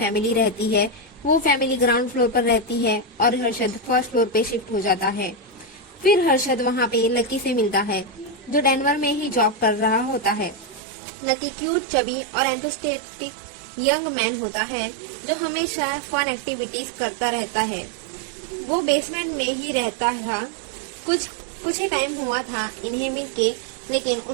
रहती है। वो फैमिली ग्राउंड फ्लोर पर रहती है और हर्षद फर्स्ट फ्लोर पे शिफ्ट हो जाता है। फिर हर्षद वहाँ पे लकी से मिलता है जो डेनवर में ही जॉब कर रहा होता है। लकी क्यूट, चबी और एंथुसियास्टिक यंग मैन होता है जो हमेशा फन एक्टिविटीज करता रहता है। वो बेसमेंट में ही रहता था। कुछ ही टाइम हुआ था इन्हें मिलके, लेकिन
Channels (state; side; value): drops out; left; at 10.8 s